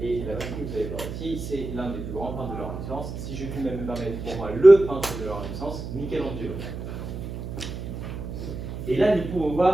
Et la machine que vous allez voir ici, c'est l'un des plus grands peintres de la Renaissance. Si je puis même me permettre, pour moi, le peintre de la Renaissance, Michelangelo. Et là, nous pouvons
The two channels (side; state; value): right; noise; hum, 7 dB below the sound